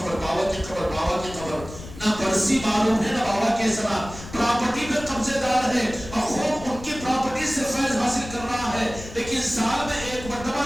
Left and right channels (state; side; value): noise; left; rumble, 14 dB below the sound